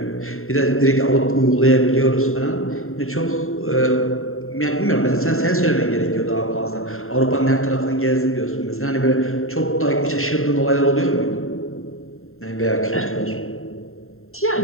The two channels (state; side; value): late; right; 0.61 ms